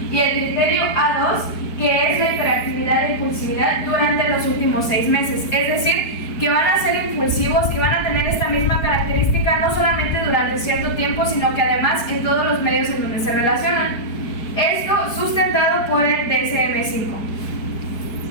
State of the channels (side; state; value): right; late; 4.7 ms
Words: y el criterio A2, que es la hiperactividad e impulsividad durante los últimos 6 meses. Es decir, que van a ser impulsivos, que van a tener esta misma característica no solamente durante cierto tiempo, sino que además en todos los medios en donde se relacionan. Esto sustentado por el DSM-5.